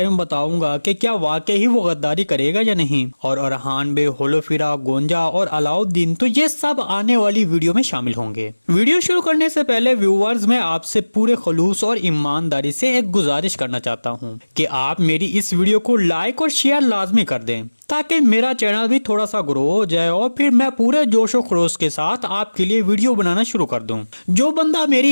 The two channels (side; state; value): both; inverted; correlation -1.00